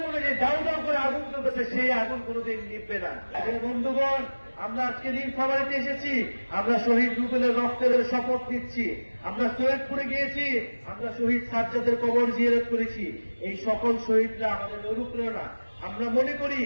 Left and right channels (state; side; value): inverted; both; correlation -1.00